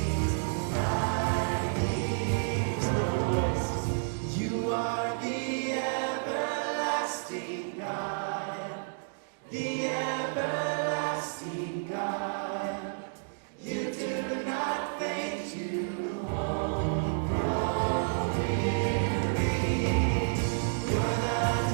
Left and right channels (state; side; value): silent; left; digital silence